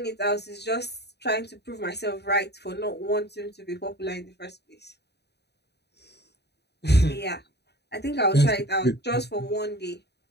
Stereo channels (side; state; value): right; late; 0.48 ms